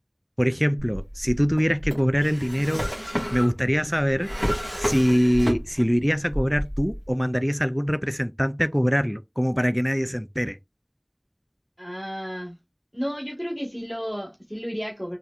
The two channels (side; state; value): both; identical; correlation 1.00